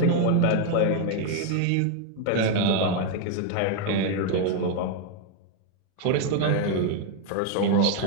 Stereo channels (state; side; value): different; both; correlation 0.01